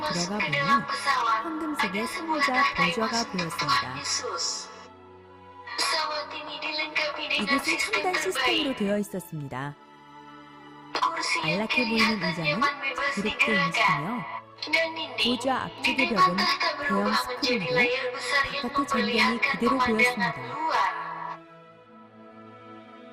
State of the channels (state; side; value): identical; both; correlation 1.00